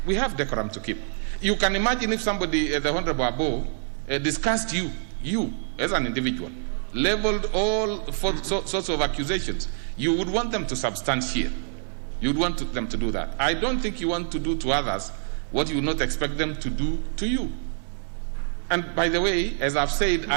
We have decorum to keep. You can imagine if somebody, the Honorable Abo, discussed you as an individual, leveled all sorts of accusations. You would want them to substantiate. You would want them to do that. I don't think you want to do to others what you would not expect them to do to you. And by the way, as I've said,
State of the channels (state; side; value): silent; left; digital silence